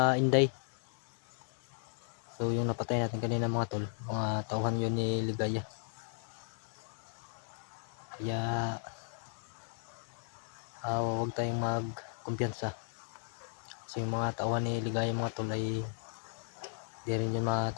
Inday. So yung napatay natin kanina mga tol, mga tauhan yun ni Ligaya. Kaya huwag tayong magkumpiyansa. Kasi yung mga tauhan ni Ligaya mga tol ay di rin yun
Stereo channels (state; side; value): silent; right; 54 dB below the other